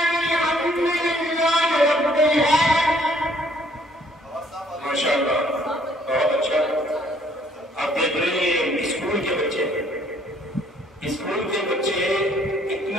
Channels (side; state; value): both; normal; correlation 0.62